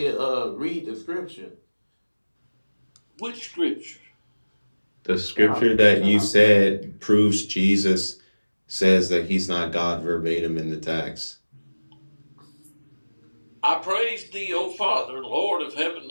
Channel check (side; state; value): both; inverted; correlation -1.00